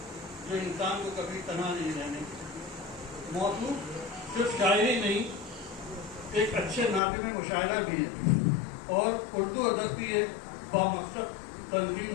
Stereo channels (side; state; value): right; drops out; at 7.0 s